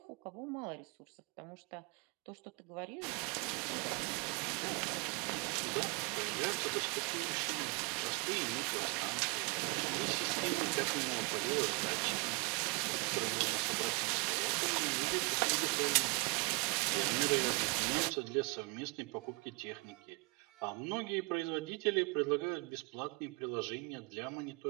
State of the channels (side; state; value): left; quieter; 30.4 dB